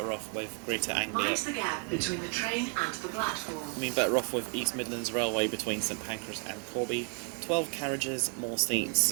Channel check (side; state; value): left; quieter; 38.3 dB